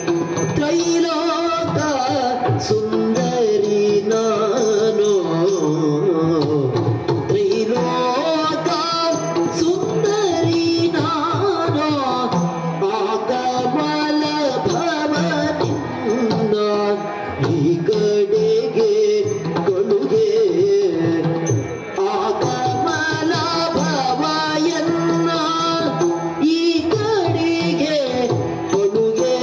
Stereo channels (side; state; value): both; identical; correlation 1.00